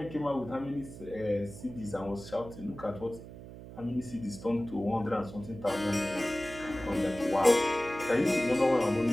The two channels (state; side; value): noise; right; hum, 14 dB below the sound